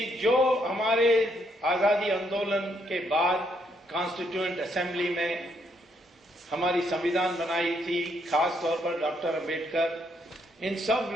जो हमारे आजादी आंदोलन के बाद कॉन्स्टिट्यूएंट असेंबली में हमारी संविधान बनाई थी, खास तौर पर डॉक्टर अंबेडकर, इन सब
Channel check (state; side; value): normal; both; correlation 0.73